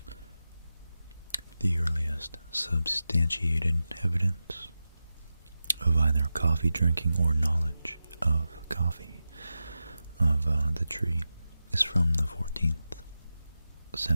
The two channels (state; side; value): inverted; both; correlation -0.93